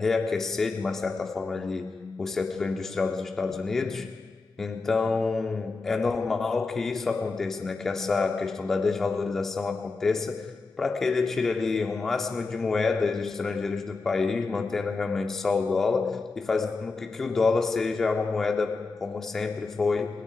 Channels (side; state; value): right; quieter; 4.0 dB